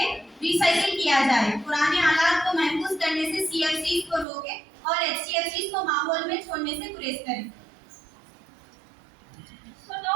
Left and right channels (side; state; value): left; drops out; at 4.2 s